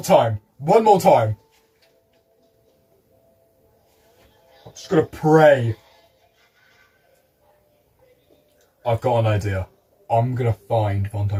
time. I'm just gonna pray. I've got an idea. I'm gonna find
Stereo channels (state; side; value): identical; both; correlation 1.00